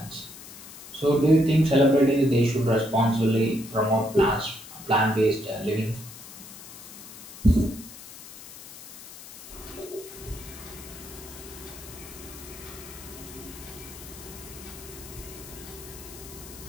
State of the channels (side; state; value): left; noise; hiss, 15 dB below the sound